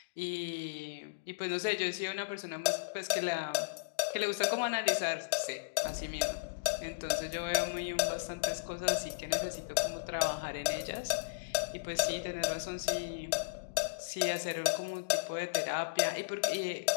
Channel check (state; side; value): quieter; right; 35.2 dB